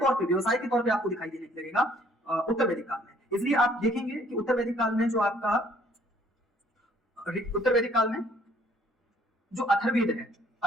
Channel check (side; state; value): both; normal; correlation 0.61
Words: पे आपको दिखाई देने लगेगा उत्तर वैदिक काल में। इसलिए आप देखेंगे कि उत्तर वैदिक काल में जो आपका उत्तर वैदिक काल में जो अथर्ववेद है,